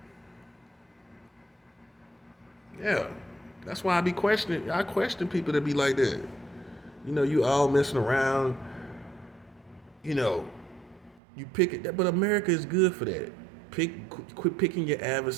Yeah. That's why I question people that be like that. You know, you all messing around. You know, you pick it, but America is good for that. Quit picking your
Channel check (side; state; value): left; drops out; at 11.2 s